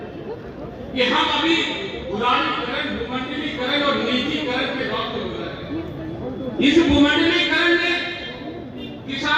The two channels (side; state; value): both; identical; correlation 1.00